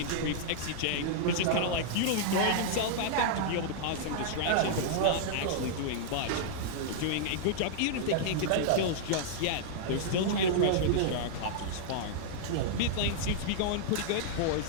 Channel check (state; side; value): different; both; correlation -0.01